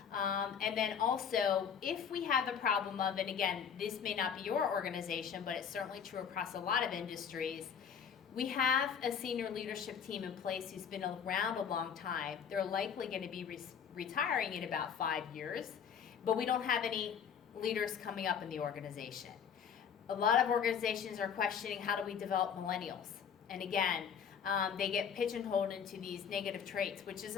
And then also, if we have a problem of, and again, this may not be your organization, but it's certainly true across a lot of industries, we have a senior leadership team in place who's been around a long time. They're likely going to be retiring in about 5 years, but we don't have any leaders coming up in the organization. A lot of organizations are questioning, how do we develop millennials? And again, they get pigeonholed into these negative traits, which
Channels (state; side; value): quieter; right; 7.5 dB